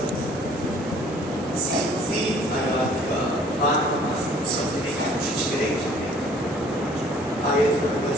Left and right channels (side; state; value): both; normal; correlation 0.55